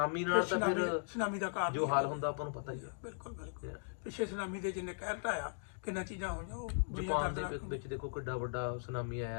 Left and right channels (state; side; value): silent; right; digital silence